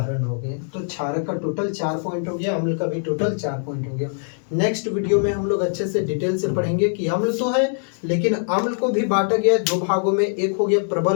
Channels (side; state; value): right; silent; digital silence